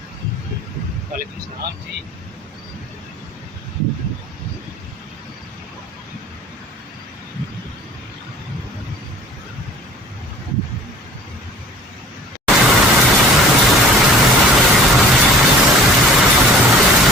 वालेकुम सलाम जी।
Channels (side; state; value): both; normal; correlation 0.47